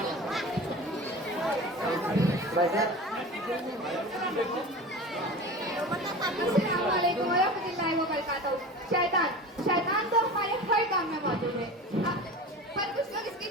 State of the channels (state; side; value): normal; both; correlation 0.33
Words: शैतान शैतान तो हमारे हर काम में मौजूद है, पर कुछ लोग इसकी